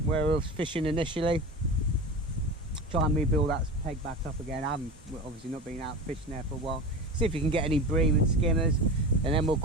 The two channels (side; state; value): both; normal; correlation 0.29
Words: where we were fishing initially. Try and rebuild that peg back up again. I haven't obviously not been out fishing there for a while. See if you can get any bream and skimmers, and then we'll